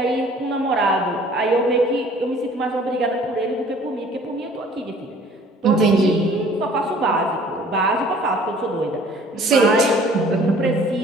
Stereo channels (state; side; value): normal; both; correlation 0.53